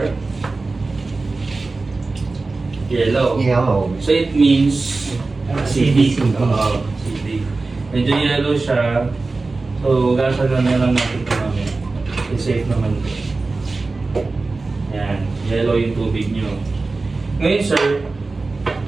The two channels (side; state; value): left; quieter; 3.6 dB